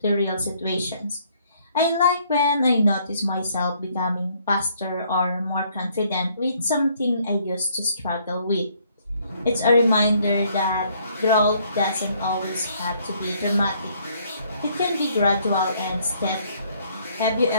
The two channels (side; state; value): both; inverted; correlation -0.65